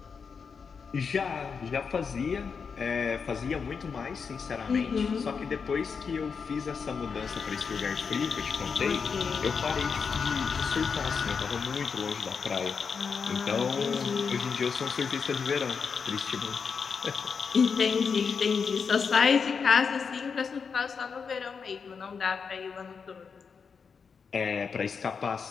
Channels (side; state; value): right; quieter; 5.8 dB